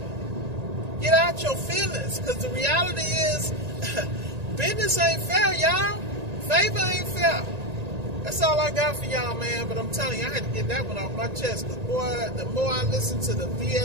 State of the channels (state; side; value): late; left; 1.9 ms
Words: Get out your feelings, because the reality is, business ain't fair, y'all. Favor ain't fair. That's all I got for y'all, man. But I'm telling you, I had to get that one off my chest. Because, boy, the more I listen to the